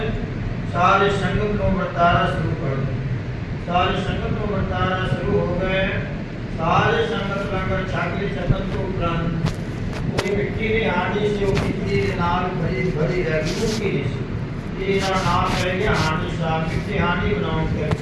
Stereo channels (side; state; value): both; identical; correlation 1.00